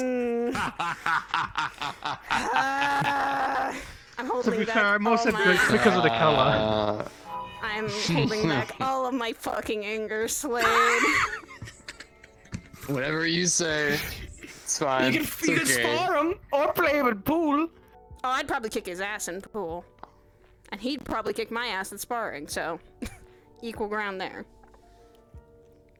I'm To holding be back fair, I'm also all my... good because of the color. I'm holding back all of my fucking anger, Slade. Whatever you say. It's fine. You It's can okay. spar him or play him in pool. Oh, I'd probably kick his ass in pool. And he'd probably kick my ass at sparring, so... equal ground there.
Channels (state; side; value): identical; both; correlation 1.00